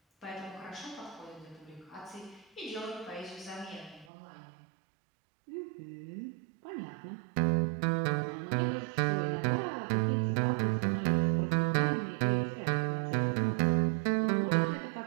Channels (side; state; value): left; drops out; at 4.1 s